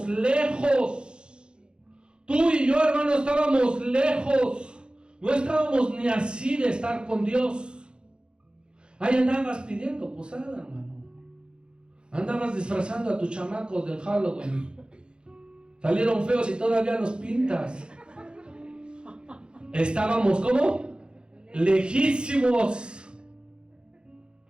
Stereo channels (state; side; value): late; left; 0.052 ms